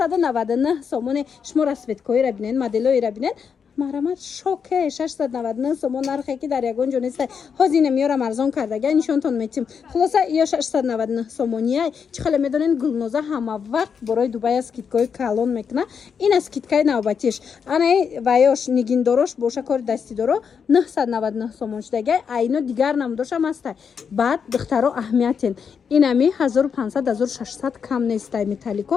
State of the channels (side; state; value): right; quieter; 6.6 dB